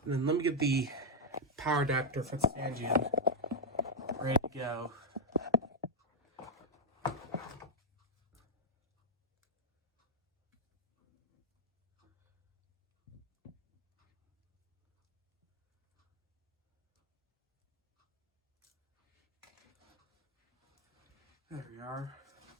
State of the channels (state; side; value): normal; both; correlation -0.02